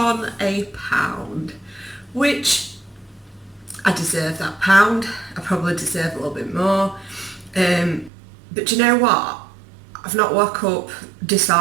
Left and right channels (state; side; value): drops out; left; at 8.1 s